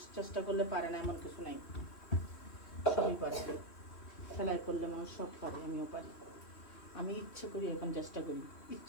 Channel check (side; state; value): right; late; 3.3 ms